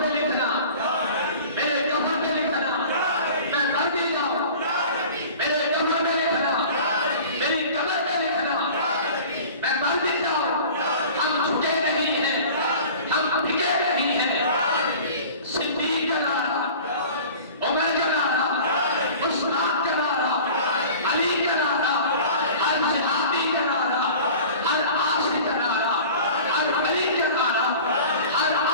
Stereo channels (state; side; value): inverted; both; correlation -0.41